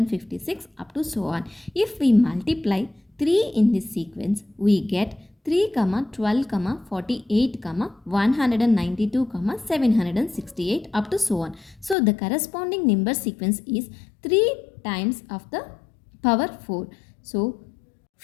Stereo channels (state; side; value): drops out; right; at 12.0 s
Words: up to so on. If we multiply 3 in this sequence, we get 3, 12, 48, 192, 768 up to so on. So the corresponding number sequence is 3 times of the power 4. So